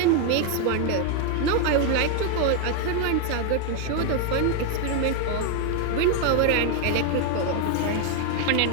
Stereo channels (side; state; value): both; different; correlation 0.01